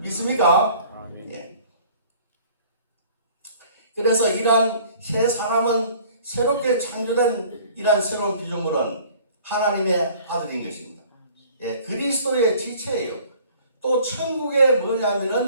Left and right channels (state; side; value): inverted; both; correlation -0.51